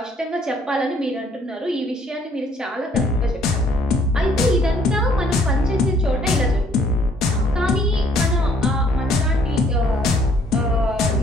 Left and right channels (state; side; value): normal; both; correlation 0.63